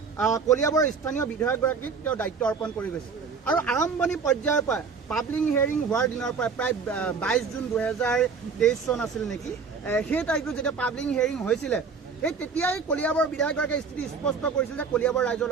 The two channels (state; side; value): quieter; left; 5.4 dB